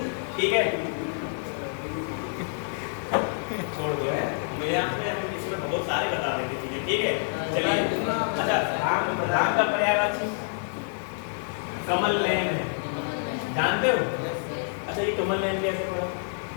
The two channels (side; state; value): right; silent; 60 dB below the other